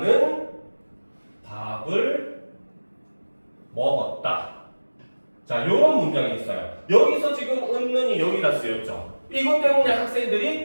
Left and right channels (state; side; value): inverted; both; correlation -1.00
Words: 밥을 먹었다. 자, 요런 문장이 있어요. 여기서 지금 은는이 여기다 쓰였죠. 이것 때문에